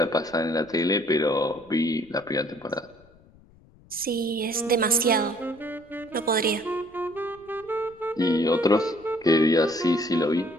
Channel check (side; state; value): left; noise; rumble, 27 dB below the sound